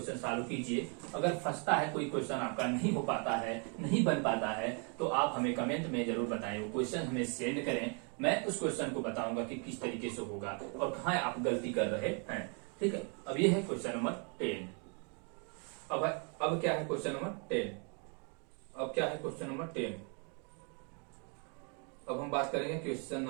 सॉल्व कीजिए। अगर फंसता है कोई क्वेश्चन आपका नहीं हो पाता है, नहीं बन पाता है, तो आप हमें कमेंट में जरूर बताएं, वो क्वेश्चन हमें सेंड करें। मैं उस क्वेश्चन को बताऊंगा कि किस तरीके से होगा और कहाँ आप गलती कर रहे हैं, ठीक है। अब ये है क्वेश्चन नंबर 10। अब क्या है क्वेश्चन नंबर 10। अब क्या है क्वेश्चन नंबर 10। अब हम बात करेंगे क्वेश्चन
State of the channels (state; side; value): quieter; left; 37.7 dB